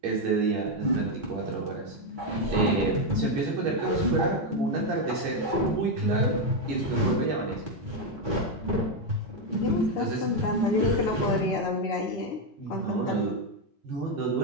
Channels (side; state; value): both; normal; correlation 0.04